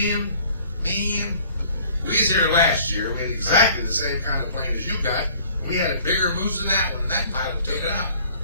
we was here last year. We had exactly the same kind of plane as you got. We had a bigger moose than that one, and that pilot took it out.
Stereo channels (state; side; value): inverted; both; correlation -0.53